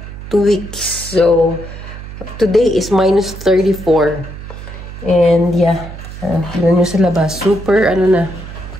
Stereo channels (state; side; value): noise; right; hum, 12 dB below the sound